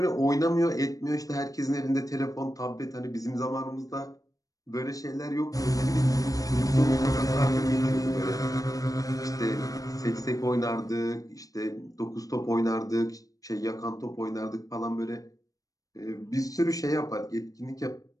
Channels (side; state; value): right; late; 0.17 ms